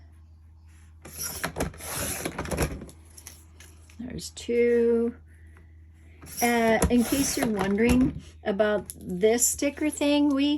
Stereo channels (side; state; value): both; identical; correlation 1.00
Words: There's 2. In case you're wondering about this sticker thing,